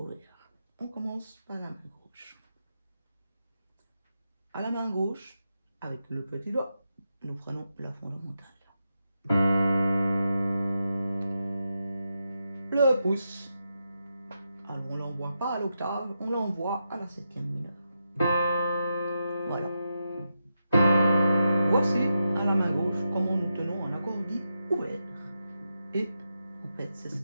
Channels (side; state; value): both; inverted; correlation -0.86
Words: on commence par la main gauche. À la main gauche, avec le petit doigt, nous prenons la fondamentale. Le pouce, alors on ne l'envoie pas à l'octave, on l'envoie à la 7e mineure. Voilà. Voici à la main gauche comment nous tenons un accord dit ouvert. Et en fait, c'est ce